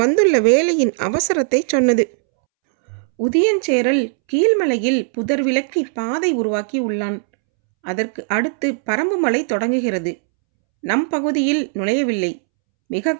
வந்துள்ள வேலையின் அவசரத்தை சொன்னது. உதியஞ்சேரல் கீழ்மலையில் புதர் விலக்கி பாதை உருவாக்கி உள்ளான். அதற்கு அடுத்து பரம்பு மலை தொடங்குகிறது. நம் பகுதியில் நுழையவில்லை. மிக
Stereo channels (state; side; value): silent; left; 67 dB below the other